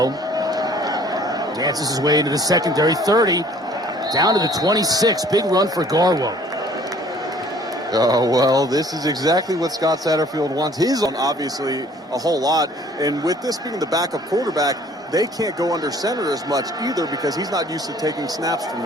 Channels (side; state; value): both; normal; correlation 0.55